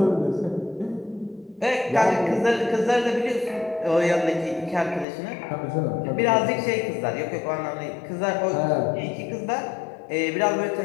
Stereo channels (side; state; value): right; drops out; at 5.1 s